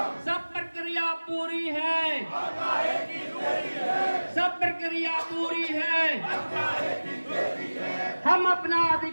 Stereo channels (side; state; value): both; inverted; correlation -1.00